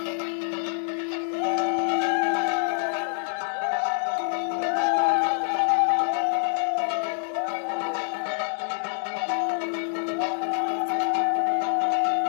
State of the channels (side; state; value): right; silent; digital silence